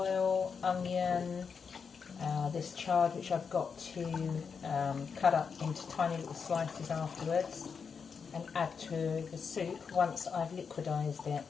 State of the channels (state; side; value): quieter; right; 5.9 dB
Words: onion, this chard which I've got to cut up into tiny little slices afterwards and add to the soup once I've liquidised it.